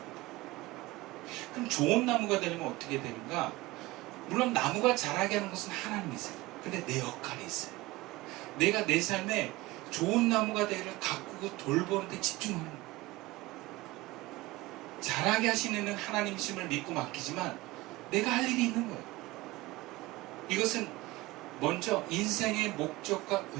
그럼 좋은 나무가 되려면 어떻게 되는가? 물론 나무가 자라게 하는 것은 하나님이세요. 근데 내 역할이 있어요. 내가 내 삶에 좋은 나무가 되기를 가꾸고 돌보는 데 집중하는 거예요. 자라게 하시는 이는 하나님이심을 믿고 맡기지만 내가 할 일이 있는 거예요. 이것은 먼저 인생의 목적과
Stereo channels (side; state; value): left; quieter; 20.2 dB